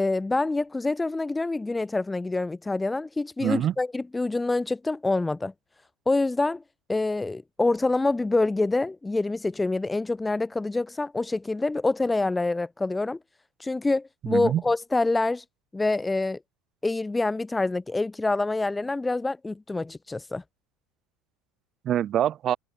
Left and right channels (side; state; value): both; normal; correlation 0.94